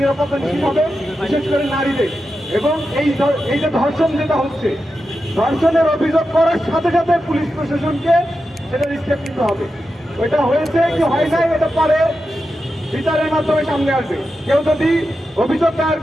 নিরাপত্তা নিশ্চিত হবে, বিশেষ করে নারীদের। এবং এই যে ধর্ষণ যেটা হচ্ছে, ধর্ষণের অভিযোগ করার সাথে সাথে পুলিশ প্রশাসনকে সেটা স্টেপ নিতে হবে। ওইটা হয়েছে কি হয় নাই, এটা পরে বিচারের মাধ্যমে সামনে আসবে। কেউ যদি অভিযোগ দায়ের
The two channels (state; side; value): normal; both; correlation 0.89